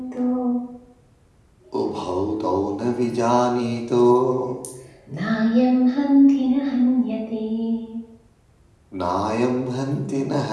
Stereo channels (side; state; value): both; identical; correlation 1.00